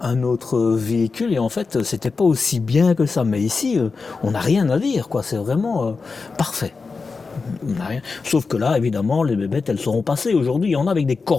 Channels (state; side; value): quieter; right; 4.5 dB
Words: véhicule et en fait, c'était pas aussi bien que ça. Mais ici, on n'a rien à dire, quoi. C'est vraiment parfait. On n'a rien. Sauf que là, évidemment, les bébêtes, elles seront passées. Aujourd'hui, il y en a avec des